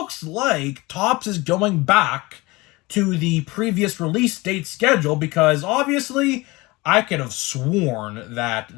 like Topps is going back to the previous release date schedule, because obviously I could have sworn that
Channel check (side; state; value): right; quieter; 22.5 dB